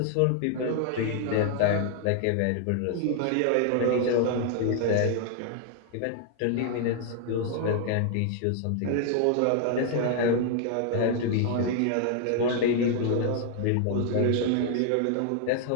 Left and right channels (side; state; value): both; different; correlation 0.00